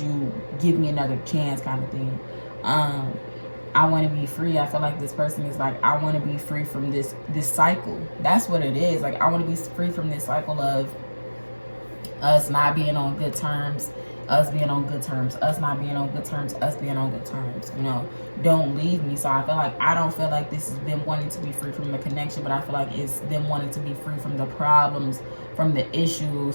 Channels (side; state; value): both; inverted; correlation -1.00